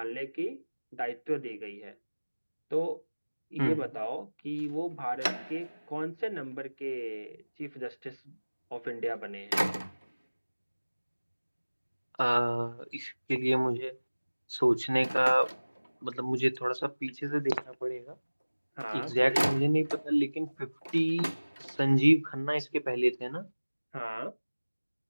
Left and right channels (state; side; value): inverted; both; correlation -1.00